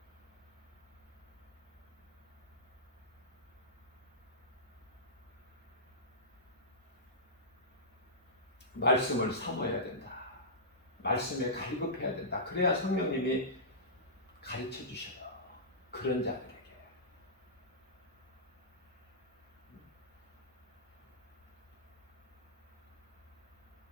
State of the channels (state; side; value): normal; both; correlation -0.17